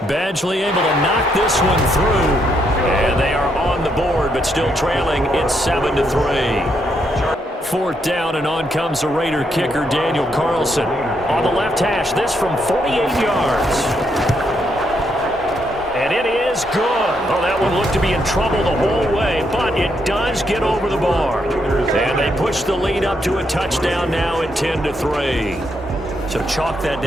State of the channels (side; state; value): both; normal; correlation 0.77